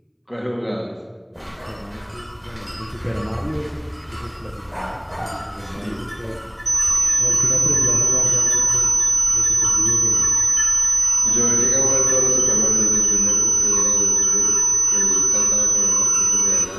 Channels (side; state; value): both; identical; correlation 1.00